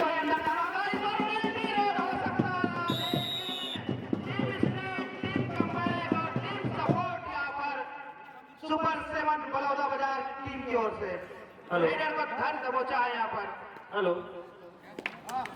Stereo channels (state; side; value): identical; both; correlation 1.00